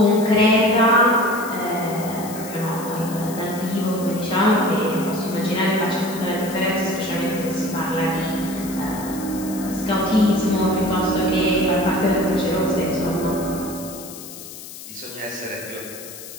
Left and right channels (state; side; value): noise; left; hiss, 14 dB below the sound